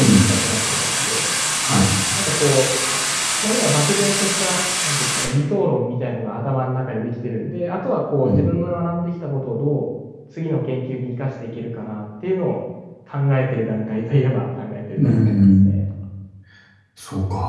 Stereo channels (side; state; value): both; identical; correlation 1.00